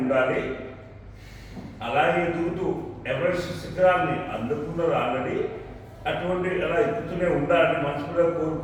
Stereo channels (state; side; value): identical; both; correlation 1.00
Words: అలాగే ఎదుగుతూ ఎవరెస్ట్ శిఖరాన్ని అందుకున్నారు ఆల్రెడీ. అటువంటి అలా ఎక్కుతూనే ఉండాలని మనసులో